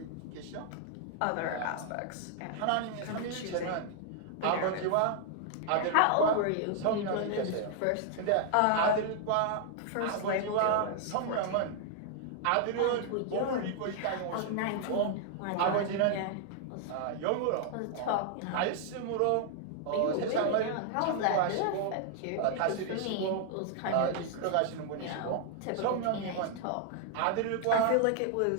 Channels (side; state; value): both; different; correlation 0.00